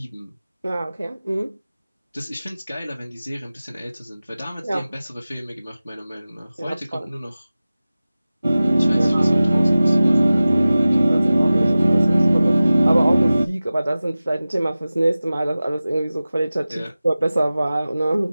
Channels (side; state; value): both; inverted; correlation -0.96